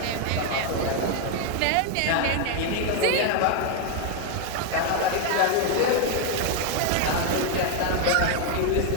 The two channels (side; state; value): both; different; correlation 0.01